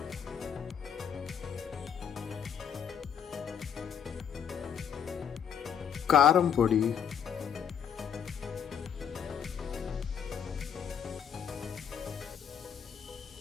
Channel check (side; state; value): right; quieter; 8.1 dB